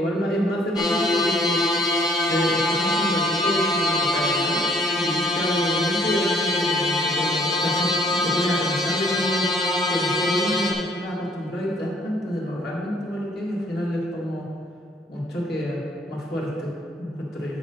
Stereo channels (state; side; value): normal; both; correlation 0.62